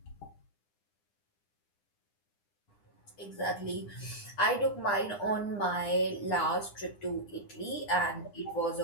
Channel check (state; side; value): late; right; 9.9 ms